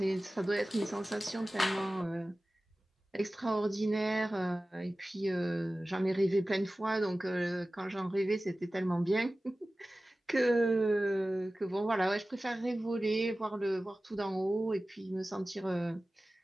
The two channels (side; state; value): both; normal; correlation 0.96